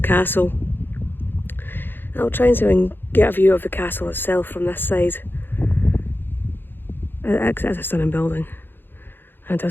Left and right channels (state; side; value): late; right; 0.099 ms